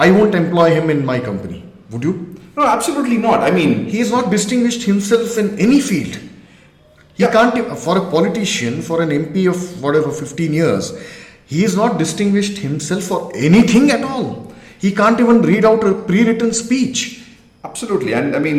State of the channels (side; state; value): both; identical; correlation 1.00